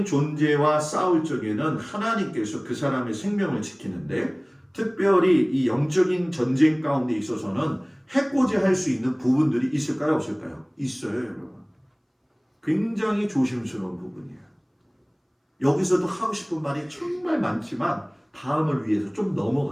존재와 싸울 적에는 하나님께서 그 사람의 생명을 지키는데 특별히 이 영적인 전쟁 가운데 있어서는 해코지할 수 있는 부분들이 있을까요? 없을까요? 있어요, 여러분. 굉장히 조심스러운 부분이에요. 여기서도 하고 싶은 말이 정말 많지만 다음을 위해서 좀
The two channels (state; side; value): identical; both; correlation 1.00